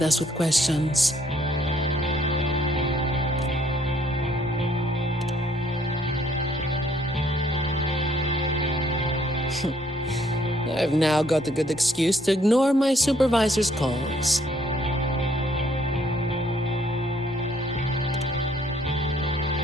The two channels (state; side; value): normal; both; correlation 0.65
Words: us with questions. I've now got a good excuse to ignore my supervisor's calls.